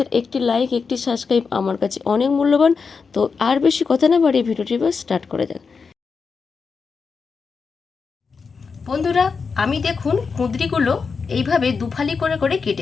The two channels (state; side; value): quieter; right; 5.2 dB